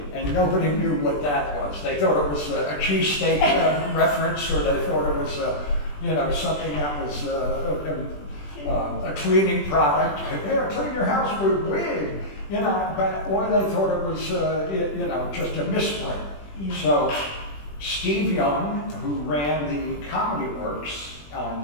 and nobody knew what that was. They thought it was a cheesesteak reference, or they thought it was something that was a cleaning product. Here, clean your house with Wid. Or they thought it was, just a misprint. Yeah. So Steve Young, who ran the Comedy Works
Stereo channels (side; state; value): right; late; 20 ms